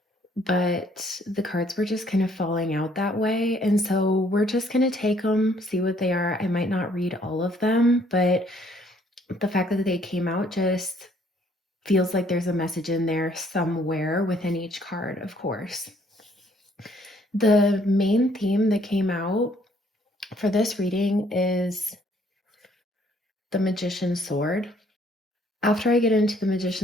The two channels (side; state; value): both; normal; correlation 0.64